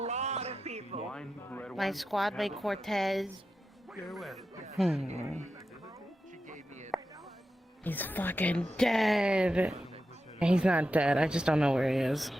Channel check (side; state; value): both; normal; correlation 0.90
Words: of people. Wine, red My wine. squad mate Cortez. He's fucking dead. He's not dead. I just don't know where he is.